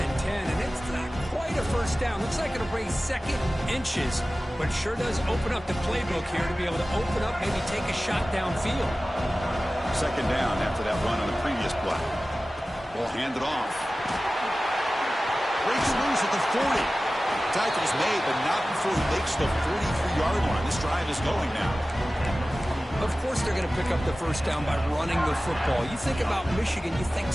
and 10, and it's not quite a first down. Looks like it'll bring 2nd inches, but sure does open up the playbook here to be able to open up, maybe take a shot downfield. 2nd down after that run on the previous play. Ball handed off. Breaks loose at the 40. Tackle's made, but not before he makes the 43-yard line. This drive is going now. Of course they're going to pick up the first down by running the football. You think about Michigan, you think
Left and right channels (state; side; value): normal; both; correlation 0.96